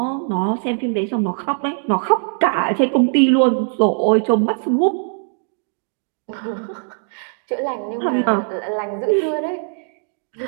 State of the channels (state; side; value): silent; left; digital silence